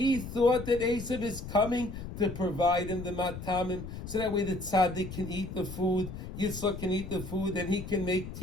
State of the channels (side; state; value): left; noise; rumble, 9 dB below the sound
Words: thought that Esav is coming to provide him the matamim, so that way the tzaddik can eat the food, Yitzchok can eat the food, and he can make